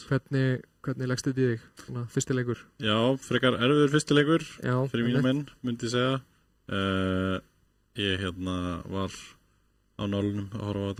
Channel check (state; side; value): identical; both; correlation 1.00